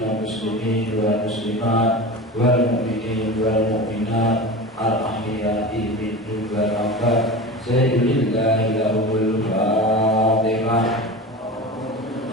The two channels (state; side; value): normal; both; correlation 0.30